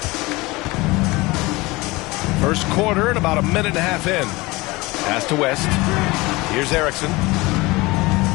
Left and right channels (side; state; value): right; quieter; 22.3 dB